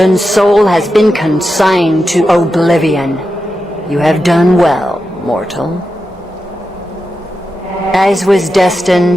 soul has been consigned to oblivion. You have done well, mortal. As was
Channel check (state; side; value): normal; both; correlation 0.89